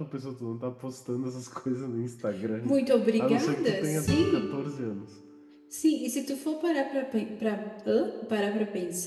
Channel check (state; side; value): identical; both; correlation 1.00